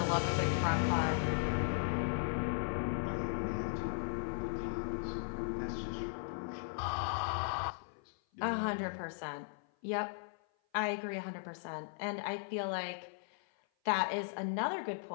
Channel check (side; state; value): right; silent; 53 dB below the other